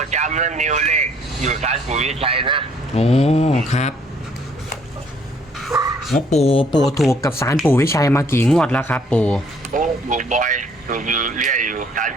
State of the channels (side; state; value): both; normal; correlation 0.62